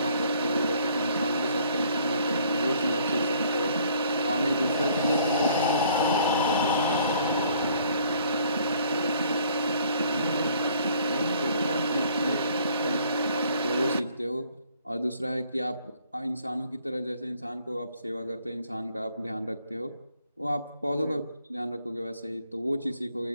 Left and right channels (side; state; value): both; inverted; correlation -0.61